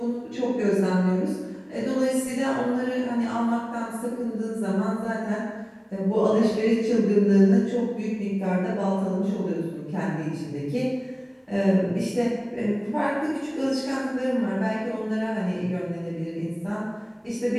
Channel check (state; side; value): identical; both; correlation 1.00